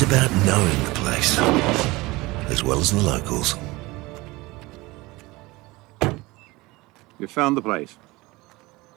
about knowing the place, as well as the locals. You found the place.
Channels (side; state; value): left; quieter; 21.6 dB